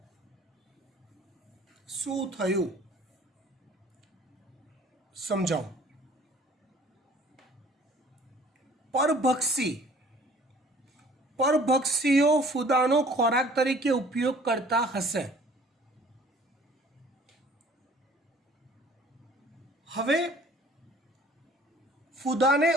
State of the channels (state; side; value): normal; both; correlation 0.52